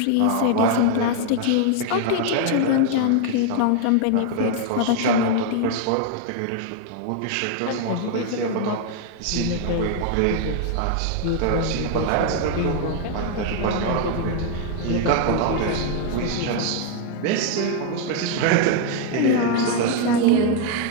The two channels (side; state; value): both; different; correlation 0.00